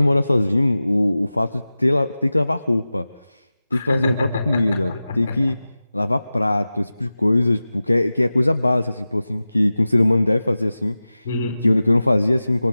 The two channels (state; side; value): inverted; both; correlation -0.96